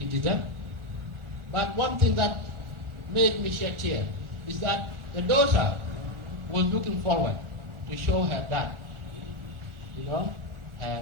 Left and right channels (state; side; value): late; left; 1.4 ms